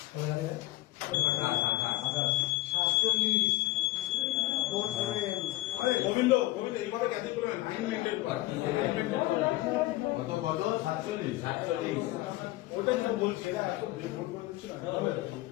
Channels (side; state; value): right; quieter; 18.1 dB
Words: গোবিন্দ এইভাবে ক্যান্সেল করে 9 মিনিটের কত কত? 47। 47। ওটাই তো বলছি না, এত ভুল করে দিচ্ছি না।